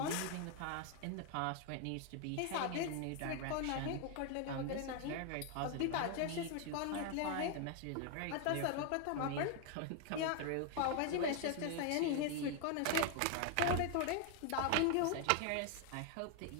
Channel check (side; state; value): both; different; correlation 0.00